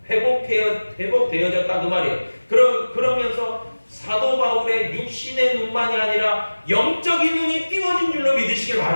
회복되어졌다 그 말이에요. 그러면서 사도 바울의 육신의 눈만이 아니라 영적인 눈이 띄워진 줄로 믿으시길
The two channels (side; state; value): both; inverted; correlation -1.00